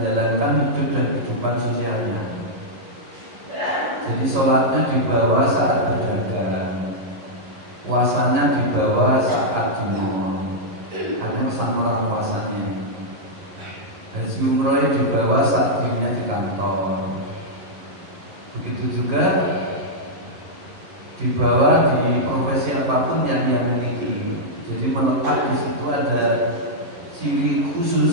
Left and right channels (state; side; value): late; left; 11 ms